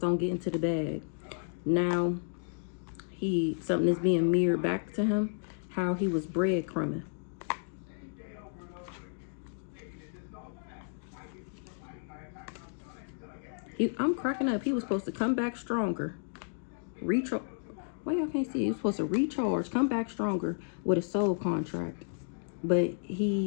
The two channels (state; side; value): silent; right; digital silence